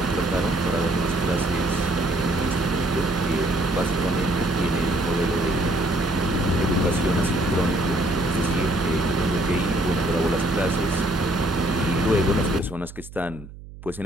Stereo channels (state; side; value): noise; right; hum, 16 dB below the sound